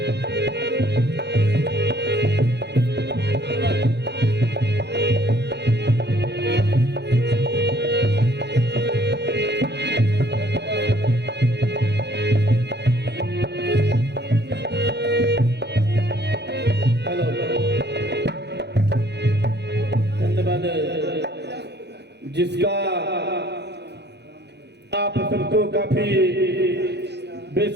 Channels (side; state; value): left; late; 0.49 ms